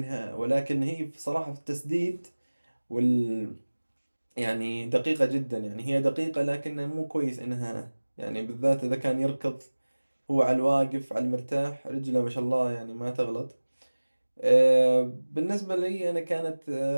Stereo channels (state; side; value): inverted; both; correlation -1.00